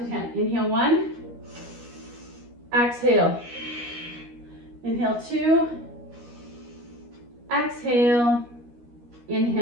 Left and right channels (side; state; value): left; late; 13 ms